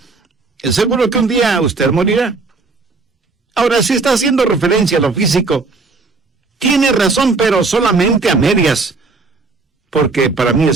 seguro que un día usted morirá. Ahora, si está haciendo referencia a lo físico, tiene razón, pero solamente a medias, porque para mí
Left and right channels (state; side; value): quieter; left; 4.0 dB